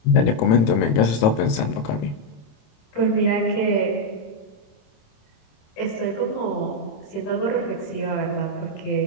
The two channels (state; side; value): late; right; 28 ms